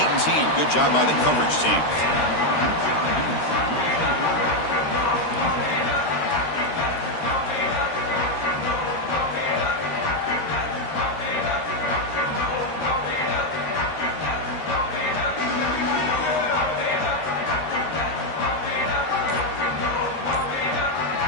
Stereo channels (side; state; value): right; late; 13 ms